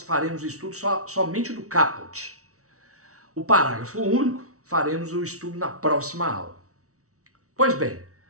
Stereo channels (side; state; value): left; late; 0.64 ms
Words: faremos o estudo somente do caput. O parágrafo único faremos o estudo na próxima aula. Pois bem,